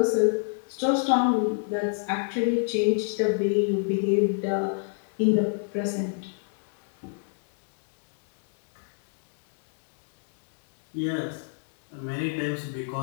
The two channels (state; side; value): silent; right; 59 dB below the other